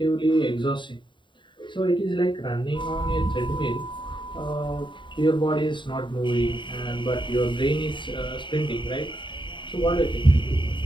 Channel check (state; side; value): late; right; 0.23 ms